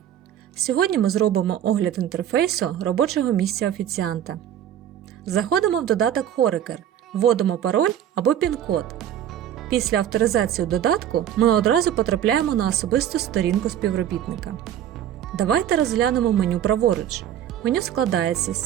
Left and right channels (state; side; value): quieter; left; 10.6 dB